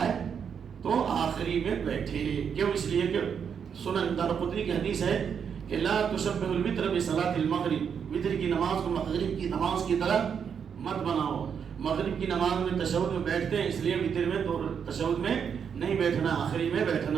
ہے تو آخری میں بیٹھے. کیوں؟ اس لیے کہ سنن دارقطنی کی حدیث ہے کہ لا تشبہ الوتر بصلاۃ المغرب، وتر کی نماز کو مغرب کی نماز کی طرح مت بناؤ. مغرب کی نماز میں تشہد میں بیٹھتے ہیں، اس لیے وتر میں تو تشہد میں نہیں بیٹھنا، آخری میں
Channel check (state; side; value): quieter; left; 7.2 dB